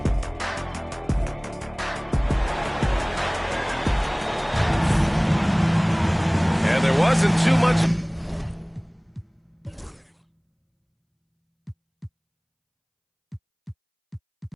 And there wasn't too much...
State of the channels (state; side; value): identical; both; correlation 1.00